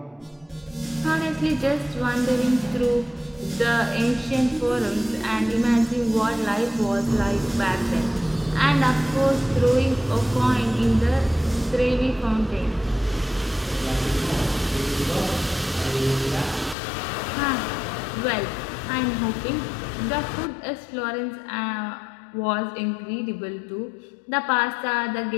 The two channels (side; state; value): right; drops out; at 16.8 s